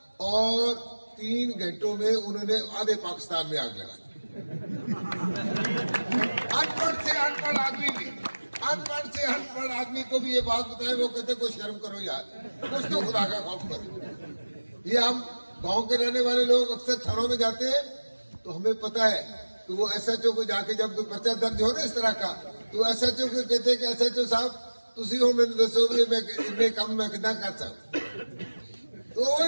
और 3 घंटों में उन्होंने आधे पाकिस्तान में आग लगा दी। अनपढ़ से अनपढ़ आदमी भी, अनपढ़ से अनपढ़ आदमी को भी ये बात बताए, वो कहते कोई शर्म करो यार, कुछ तो खुदा का खौफ करो। ये हम गांव के रहने वाले लोग अक्सर थानों में जाते हैं तो हमें पता है कि वो एसएचओ को जाके जब कोई पर्चा दर्ज हो ना इस तरह का, तो एसएचओ को कहते हैं कि एसएचओ साहब तुसी हो मैंने दसो भी मैं इतने कम मैं कितना कर सकता, तो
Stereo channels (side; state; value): both; inverted; correlation -1.00